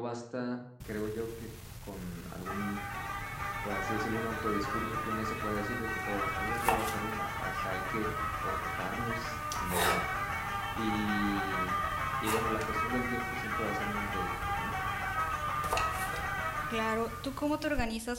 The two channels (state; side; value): identical; both; correlation 1.00